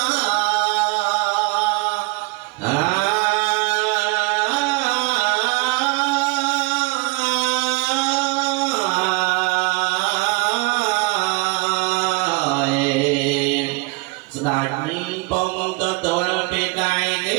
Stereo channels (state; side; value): quieter; left; 26.0 dB